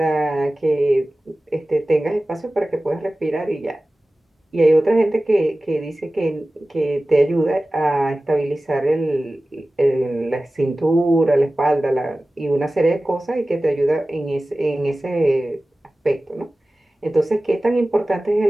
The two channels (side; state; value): both; normal; correlation 0.97